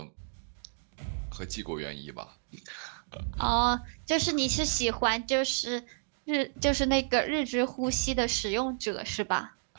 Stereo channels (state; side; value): silent; left; digital silence